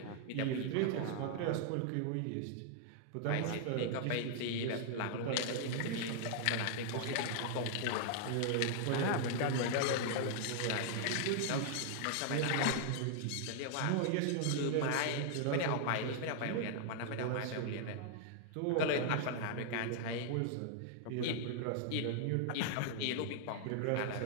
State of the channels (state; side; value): different; both; correlation 0.00